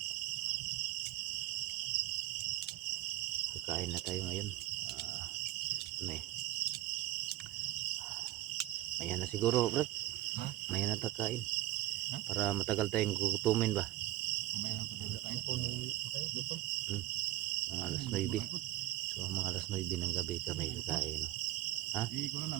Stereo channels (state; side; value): quieter; left; 16.1 dB